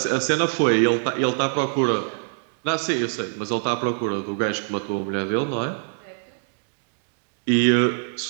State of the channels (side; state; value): left; silent; digital silence